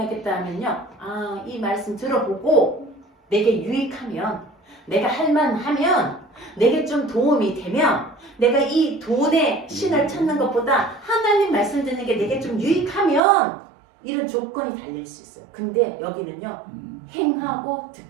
하면요. 아, 이 말씀 들어보고 내게 유익하면 내가 할만하면 내게 좀 도움이 되면 내가 이 돈의 신을 찾는 것보다 하나님 말씀 듣는 게 내게 좀 유익하면 이런 조건이 달릴 수 있어요. 근데 여기는요. 행하고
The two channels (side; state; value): left; drops out; at 13.2 s